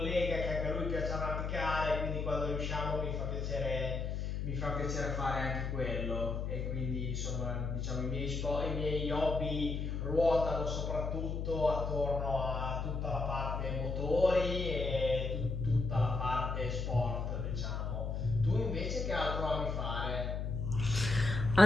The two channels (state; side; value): noise; left; hum, 2 dB below the sound